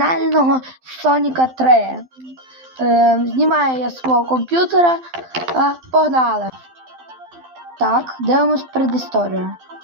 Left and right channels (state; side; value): late; left; 12 ms